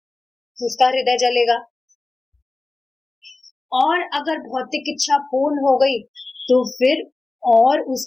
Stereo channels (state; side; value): quieter; right; 3.2 dB